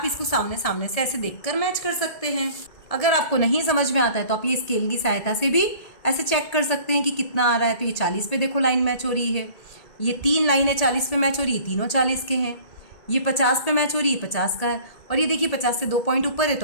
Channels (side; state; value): right; late; 1.8 ms